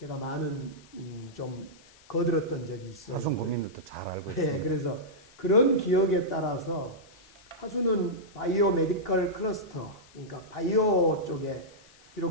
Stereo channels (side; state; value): left; noise; hiss, 26 dB below the sound